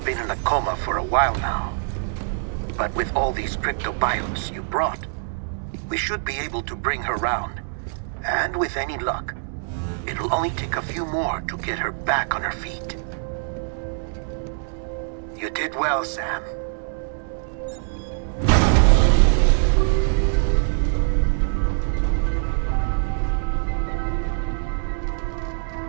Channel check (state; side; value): silent; left; 63 dB below the other